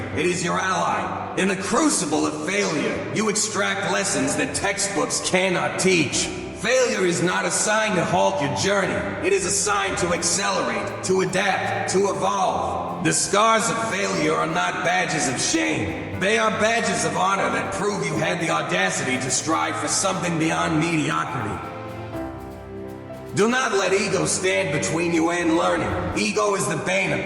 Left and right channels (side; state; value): both; identical; correlation 1.00